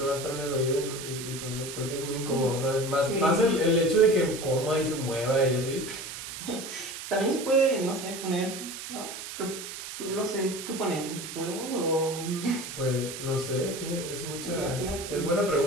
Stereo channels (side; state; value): right; noise; hiss, 9 dB below the sound